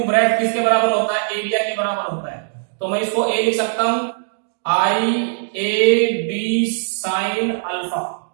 breadth किसके बराबर होता है, एरिया के बराबर होता है, तो मैं इसको ए लिख सकता हूं I A B sine alpha,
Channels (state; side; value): silent; left; digital silence